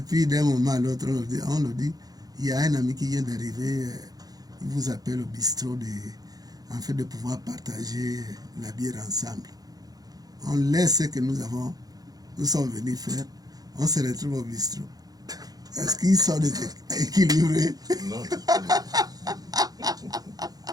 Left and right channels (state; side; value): late; left; 0.18 ms